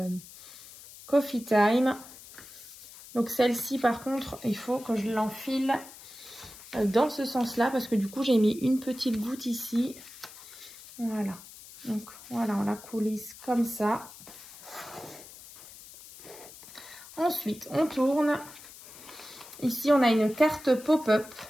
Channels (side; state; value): left; noise; hiss, 18 dB below the sound